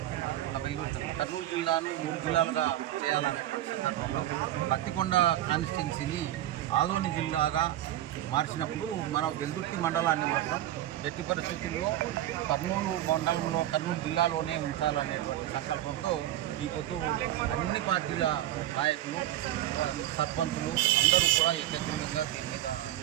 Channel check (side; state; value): left; quieter; 13.4 dB